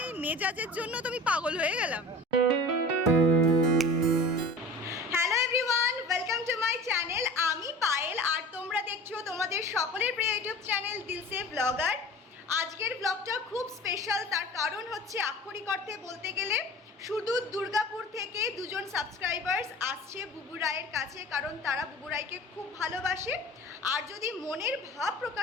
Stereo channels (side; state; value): both; normal; correlation 0.39